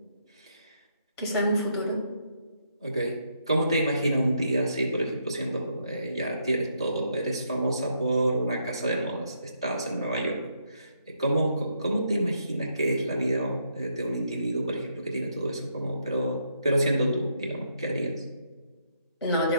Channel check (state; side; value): inverted; both; correlation -0.76